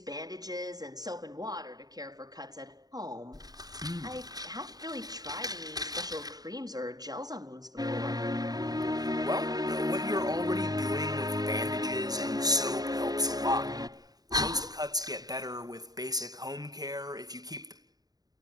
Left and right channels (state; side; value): late; left; 0.19 ms